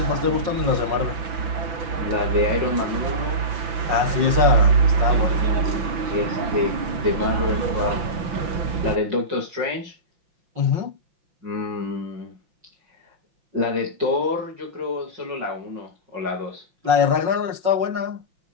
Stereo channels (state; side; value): late; left; 6.0 ms